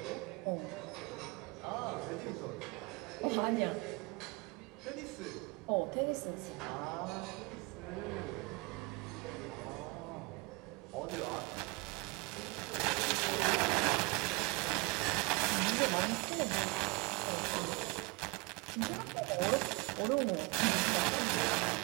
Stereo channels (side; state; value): left; quieter; 26.9 dB